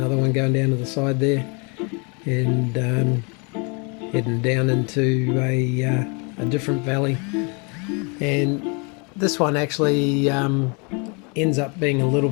one going down to the side there, and heading down into a different valley. And this one actually ends up being a little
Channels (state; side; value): quieter; right; 33.1 dB